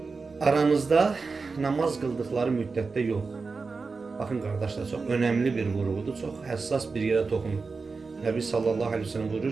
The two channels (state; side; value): quieter; left; 4.4 dB